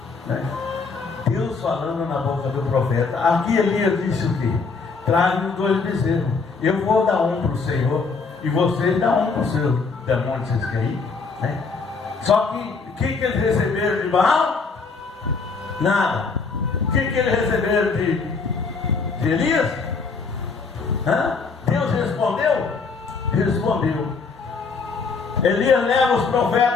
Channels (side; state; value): right; quieter; 4.6 dB